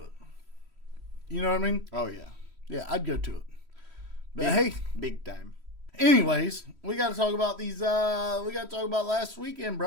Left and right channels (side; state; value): left; late; 3.1 ms